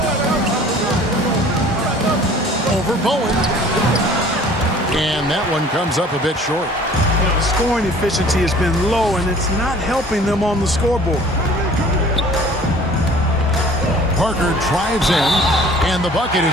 Over Bowen. And that one comes up a bit short. The scoring efficiency has been low, and it's not helping them on the scoreboard. Parker drives in, and the bucket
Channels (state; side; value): normal; both; correlation 0.50